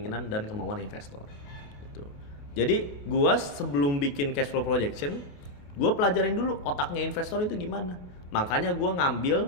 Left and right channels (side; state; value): right; late; 28 ms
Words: dan kemauan investor. Gitu. Jadi, gua sebelum bikin cash flow projection, gua pelajarin dulu otaknya investor itu gimana. Makanya gua